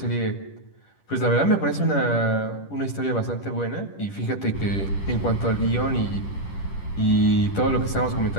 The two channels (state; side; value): late; right; 10 ms